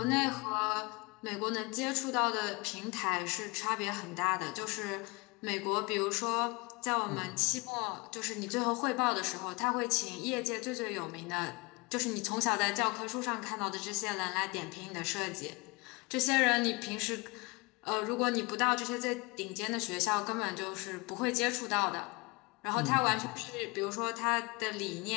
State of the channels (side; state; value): right; quieter; 26.3 dB